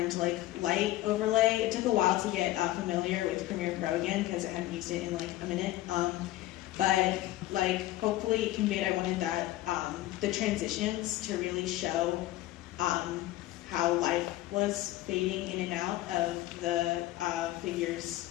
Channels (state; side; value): quieter; right; 16.1 dB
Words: like light overlay. It took a while to get familiar with Premiere Pro again because I hadn't used it in like a minute. But like hopefully it conveyed, I wanted that the transitions to really show how life was fading in and out of the figure's